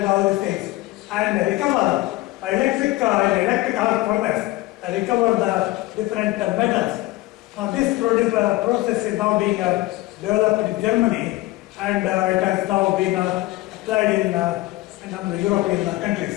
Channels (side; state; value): right; quieter; 18.7 dB